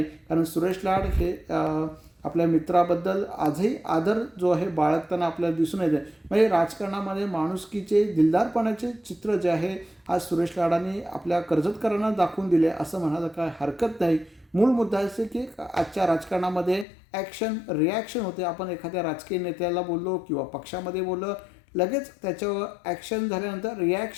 कारण सुरेश लाड हे आपल्या मित्राबद्दल आजही आदर जो आहे बाळगताना आपल्याला दिसून येते. म्हणजे राजकारणामध्ये माणुसकीचे, दिलदारपणाचे चित्र जे आहे आज सुरेश लाडांनी आपल्या कर्जतकरांना दाखवून दिले असं म्हणायला काय हरकत नाही. मूळ मुद्दा असे की आजच्या राजकारणामध्ये ॲक्शन रिॲक्शन होते. आपण एखाद्या राजकीय नेत्याला बोललो किंवा पक्षामध्ये बोललो, लगेच त्याच्यावर ॲक्शन झाल्यानंतर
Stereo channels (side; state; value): right; drops out; at 16.9 s